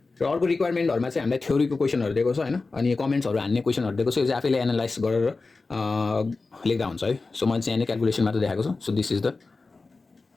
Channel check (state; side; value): quieter; right; 3.8 dB